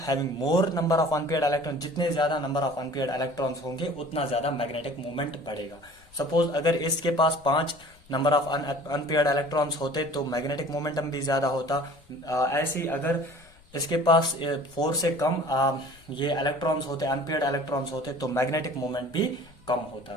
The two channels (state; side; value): noise; left; rumble, 27 dB below the sound